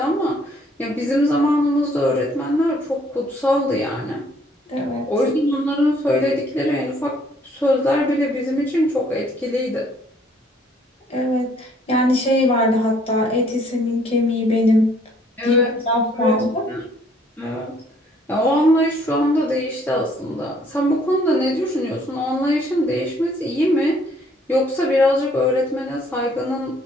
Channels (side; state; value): both; normal; correlation 0.63